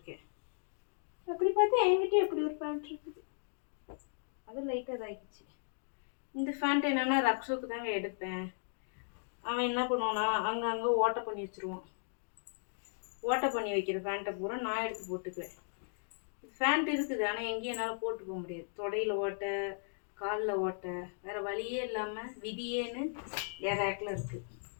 அப்படி பார்த்தா என்கிட்ட எப்படி ஒரு பேண்ட் இருக்குது. அது லைட்டாக இதாகிடுச்சு. இந்த பேண்ட் என்னன்னா ரக்ஷோக்கு தாங்க எடுப்பேன். அவன் என்ன பண்ணுவானா அங்கங்கே ஓட்டை பண்ணி வச்சுருவான். ஓட்டை பண்ணி வைக்கிற பேண்ட்டை பூரா நான் எடுத்து போட்டுக்குவேன். பேண்ட் இருக்குது, ஆனால் எங்கேயும் என்னால் போட்டு போக முடியாது. தொடையில் ஓட்டை, காலில் ஓட்டை, வேறு வழியே இல்லாமல் விதியேன்னு என் ரேக்கில் இருக்குது.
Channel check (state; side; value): silent; right; digital silence